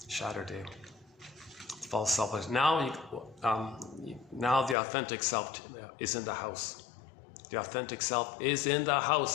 shatter day. False self is now the authentic self is in the house. The authentic self is in the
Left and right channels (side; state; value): right; drops out; at 4.8 s